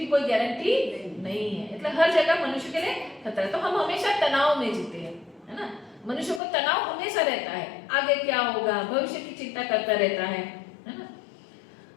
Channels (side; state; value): right; drops out; at 6.4 s